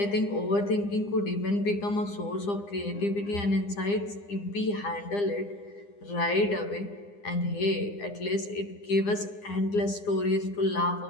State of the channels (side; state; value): right; late; 9.8 ms